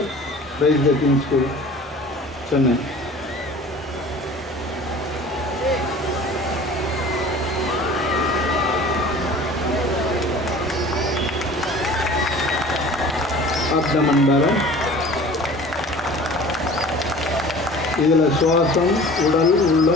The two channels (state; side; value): normal; both; correlation 0.43